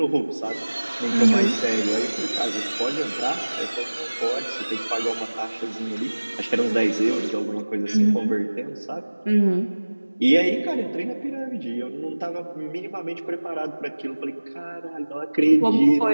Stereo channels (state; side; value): inverted; both; correlation -1.00